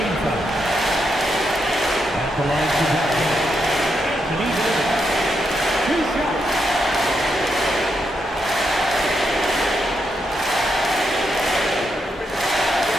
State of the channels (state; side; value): normal; both; correlation 0.82